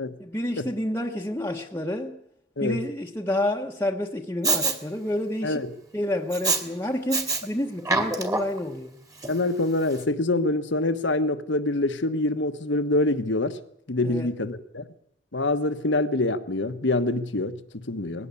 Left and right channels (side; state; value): both; normal; correlation 0.24